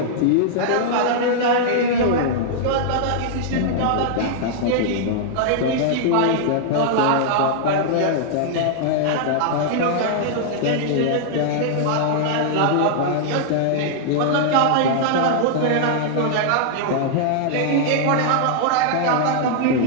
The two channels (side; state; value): both; different; correlation -0.01